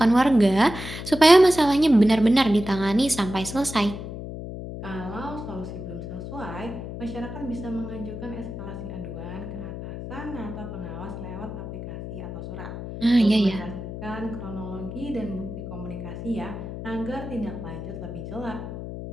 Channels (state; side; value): noise; left; hum, 8 dB below the sound